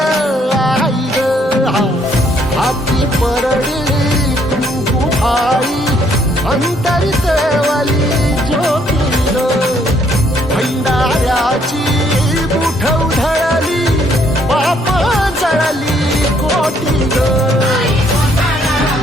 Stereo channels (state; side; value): normal; both; correlation 0.68